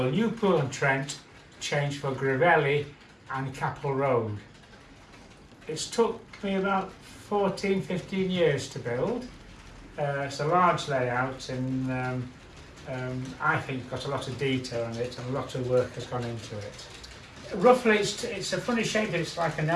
Newpool-on-Trent, changed for Gravelly and Capel Road. It's took me about 14-15 years to build. It's a large layout, and I think got a lot of detail in it, and a lot of work has gone into it. Roughly it's a funny shape, it's like an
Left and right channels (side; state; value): both; identical; correlation 1.00